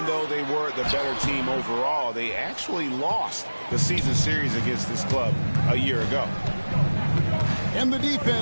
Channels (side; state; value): both; inverted; correlation -1.00